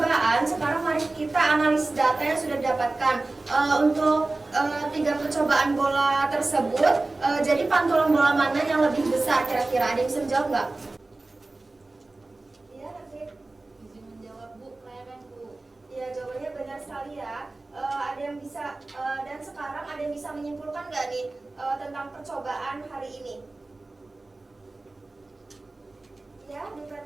sekarang mari kita analisis data yang sudah didapatkan. Untuk 3 percobaan bola tersebut, jadi pantulan bola mana yang lebih besar kira-kira? Ada yang bisa menjawab nggak? Iya, Rafiq. Izin menjawab, Bu. Kelereng, Bu. Ya, jawabannya benar sekali ya. Ada yang bisa, dan sekarang ada yang bisa menyimpulkan nggak nih tentang percobaan hari ini? Ya, Bu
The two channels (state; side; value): quieter; left; 3.1 dB